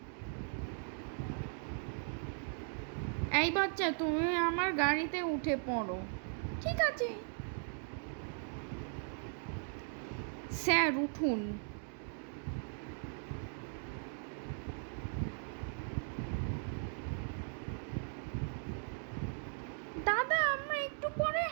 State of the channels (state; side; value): silent; left; 52 dB below the other